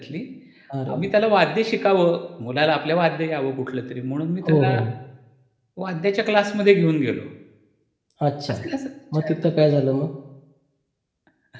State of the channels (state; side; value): identical; both; correlation 1.00